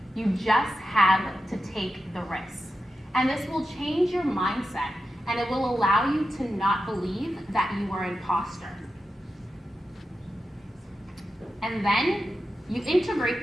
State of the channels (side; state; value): both; normal; correlation 0.91